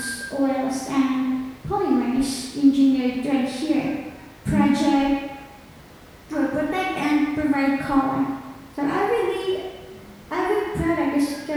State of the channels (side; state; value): both; identical; correlation 1.00